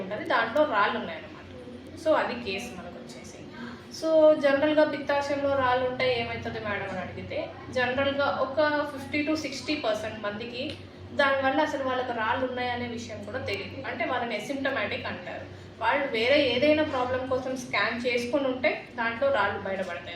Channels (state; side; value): identical; both; correlation 1.00